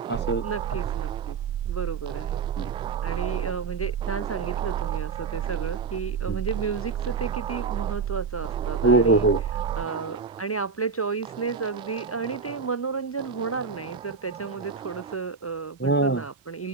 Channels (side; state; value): left; quieter; 5.0 dB